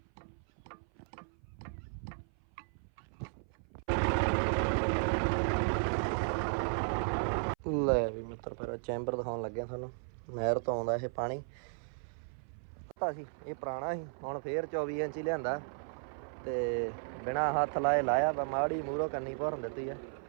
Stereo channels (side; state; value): left; silent; 54 dB below the other